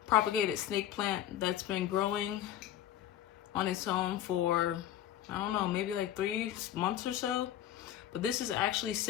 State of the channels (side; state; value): right; quieter; 11.7 dB